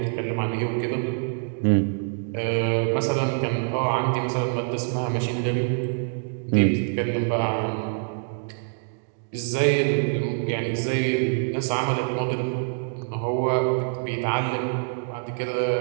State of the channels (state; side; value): silent; left; digital silence